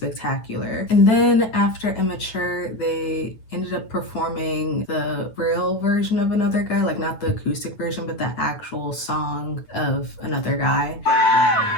And then after Immature, they ended up performing the real version of Another Guy, like not the acoustic version, but the actual song of Another Guy.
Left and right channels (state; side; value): late; right; 9.1 ms